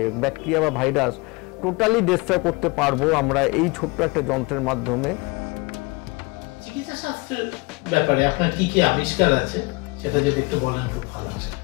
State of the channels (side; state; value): right; quieter; 26.3 dB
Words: ব্যাকটেরিয়া বা ভাইরাস টোটালি ডিস্ট্রয় করতে পারবো আমরা এই ছোট্ট একটা যন্ত্রের মাধ্যমে। চিকিৎসা শাস্ত্রের ব্যাপারে আপনার কি কি আবিষ্কার আছে সেটা যদি একটু বলেন খুব ভালো হয়।